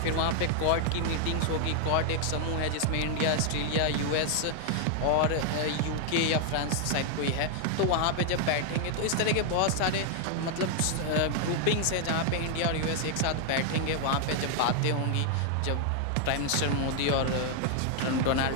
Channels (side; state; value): both; different; correlation 0.00